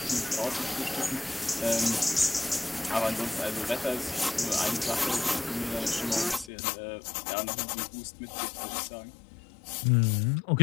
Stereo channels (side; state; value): right; drops out; at 6.5 s